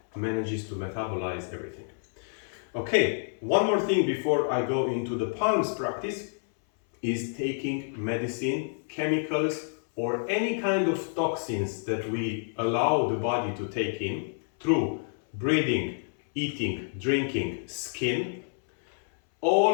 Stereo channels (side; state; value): right; silent; 59 dB below the other